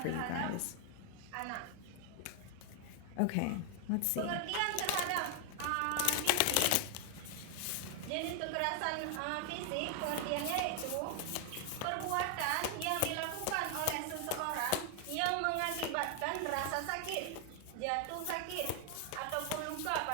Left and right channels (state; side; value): different; both; correlation 0.00